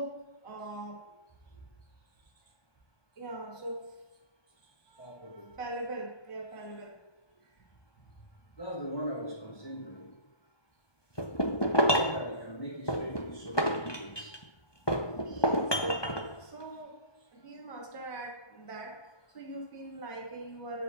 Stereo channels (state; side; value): late; right; 1.2 ms